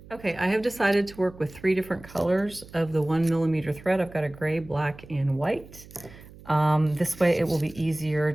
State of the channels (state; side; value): noise; right; hum, 20 dB below the sound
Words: Okay, I have decided to work with 3 different colors of the 1mm thread. I've got a gray, black, and white. This way it will be easier